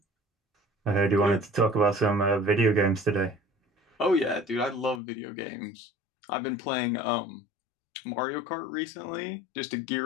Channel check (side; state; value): right; drops out; at 5.0 s